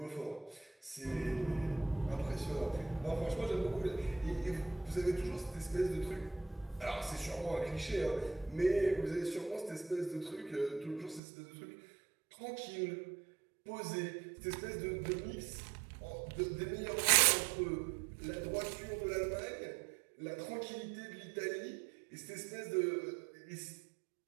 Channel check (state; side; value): drops out; left; at 11.2 s